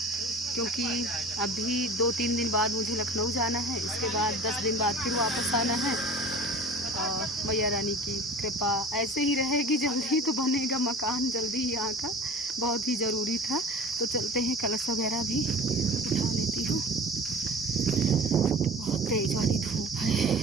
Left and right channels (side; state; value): both; normal; correlation 0.40